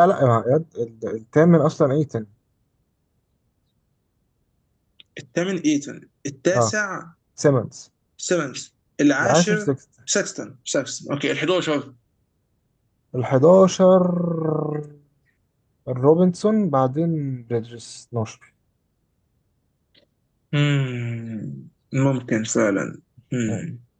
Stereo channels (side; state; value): both; identical; correlation 1.00